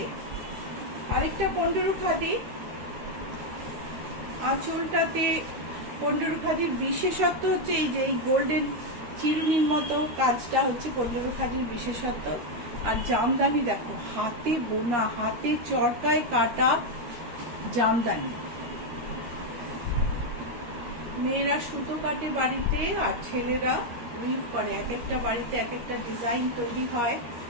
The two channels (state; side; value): late; left; 13 ms